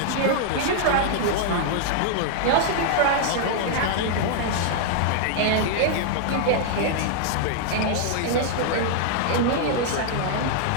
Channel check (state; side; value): different; both; correlation -0.01